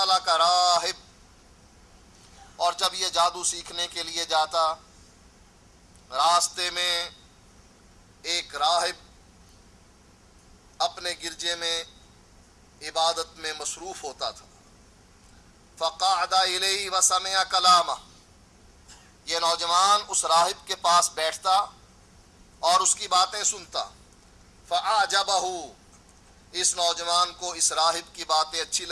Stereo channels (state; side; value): identical; both; correlation 1.00